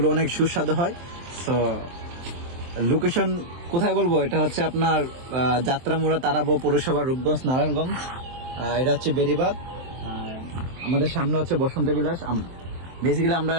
অনেক সুস্বাদু হয়। তো লোকেশন কোথায় বলবো, এটা হচ্ছে আপনার যাত্রামুড়া তারাবো পৌরসভা রূপগঞ্জ নারায়ণগঞ্জ। এটা হচ্ছে বেরিবাদ। আমাদের সামনে হচ্ছে বসন্ত বিলাস। বেসিক্যালি আমরা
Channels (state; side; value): late; left; 23 ms